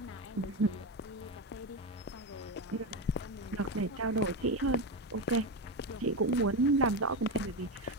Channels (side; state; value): both; normal; correlation 0.15